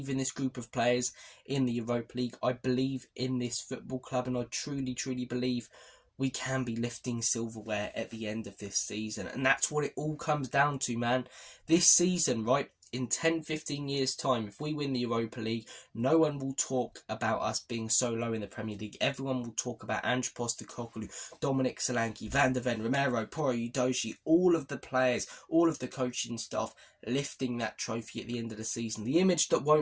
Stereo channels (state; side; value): identical; both; correlation 1.00